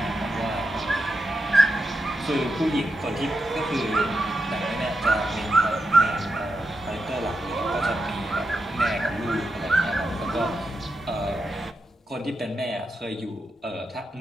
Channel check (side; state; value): both; normal; correlation 0.87